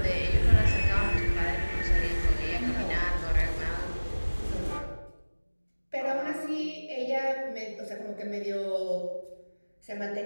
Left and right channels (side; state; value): both; inverted; correlation -1.00